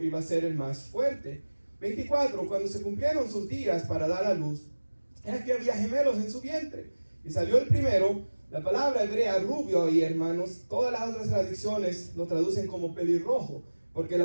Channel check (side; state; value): both; inverted; correlation -1.00